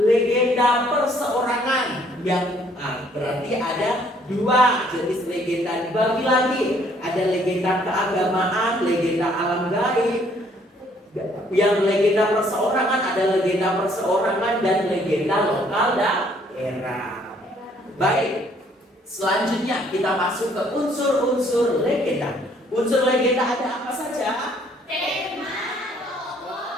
perseorangan. Yang berarti ada 2 jenis legenda dibagi lagi. Ada legenda keagamaan, legenda alam gaib. Yang legenda perseorangan ada legenda perseorangan dan legenda lokal daerah. Baik, selanjutnya kita masuk ke unsur-unsur legenda. Unsur legenda ada apa saja? Tema,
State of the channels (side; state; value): both; normal; correlation 0.64